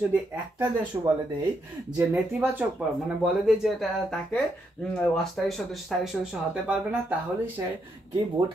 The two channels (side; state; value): both; normal; correlation 0.79